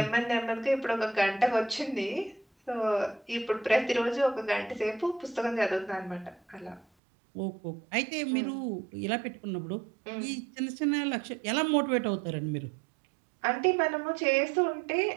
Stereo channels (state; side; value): drops out; left; at 6.9 s